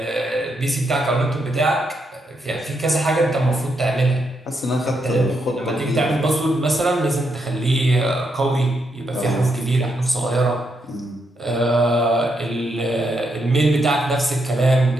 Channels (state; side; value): normal; both; correlation 0.80